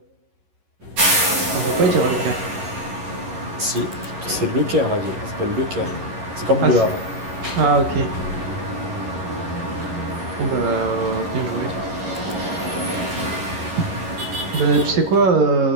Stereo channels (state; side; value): late; left; 11 ms